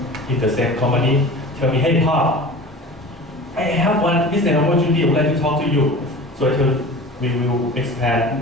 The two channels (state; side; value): normal; both; correlation 0.37